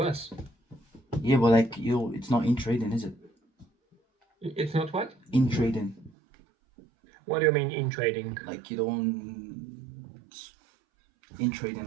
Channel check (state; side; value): drops out; left; at 6.1 s